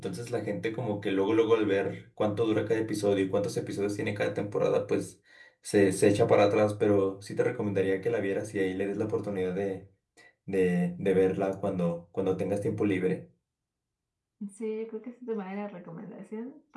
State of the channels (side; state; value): both; identical; correlation 1.00